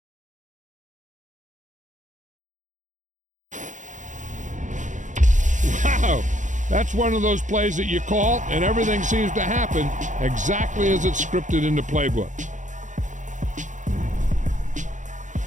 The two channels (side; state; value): left; late; 0.36 ms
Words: Wow, that's one of those plays that you call and everything seems to happen exactly as it's scripted in the playbook.